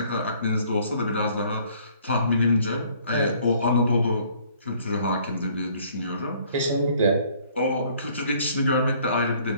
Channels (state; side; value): inverted; both; correlation -0.60